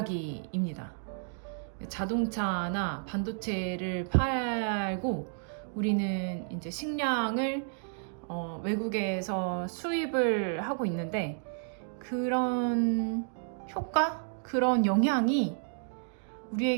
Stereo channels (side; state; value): left; silent; digital silence